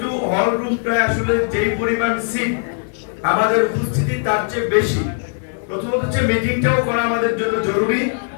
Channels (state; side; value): silent; right; digital silence